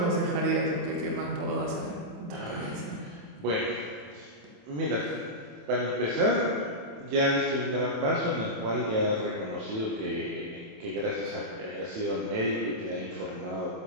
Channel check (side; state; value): left; late; 27 ms